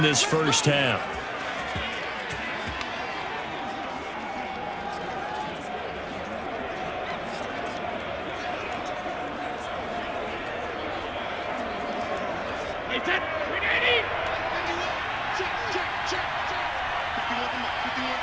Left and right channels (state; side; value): identical; both; correlation 1.00